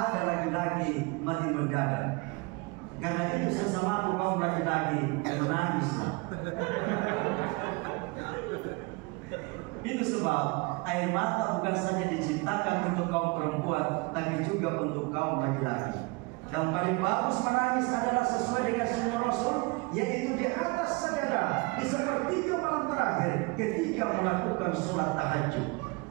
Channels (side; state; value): left; quieter; 27.3 dB